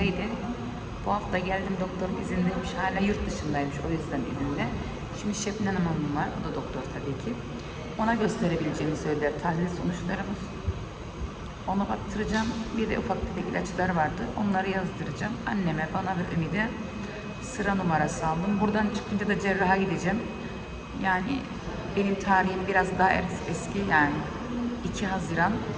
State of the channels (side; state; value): both; identical; correlation 1.00